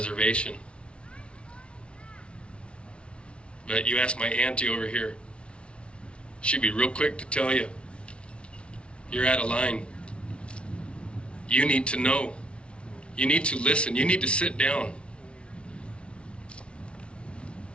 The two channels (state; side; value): late; right; 0.059 ms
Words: But you ask my auntie over here, she'd be real quick to tell you, you're out of line. You need to know. You need to listen. You need to sit down.